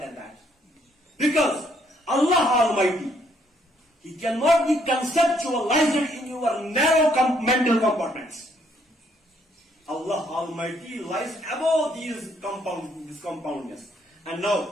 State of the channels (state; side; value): normal; both; correlation 0.69